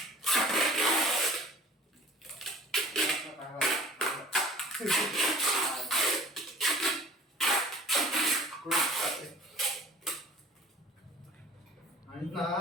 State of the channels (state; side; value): normal; both; correlation 0.47